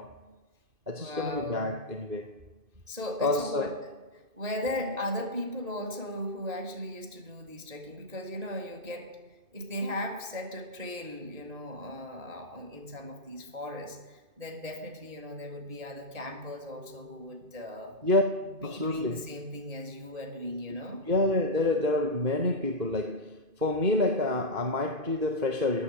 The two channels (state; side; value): late; left; 2.5 ms